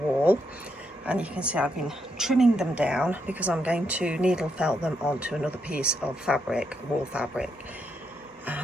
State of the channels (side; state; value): both; normal; correlation 0.79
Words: and you can see I've been trimming them down because I'm going to needle felt them onto another piece of fabric, wall fabric.